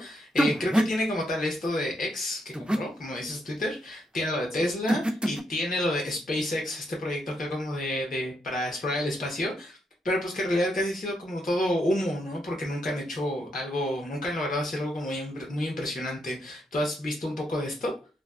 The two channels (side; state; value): both; normal; correlation 0.78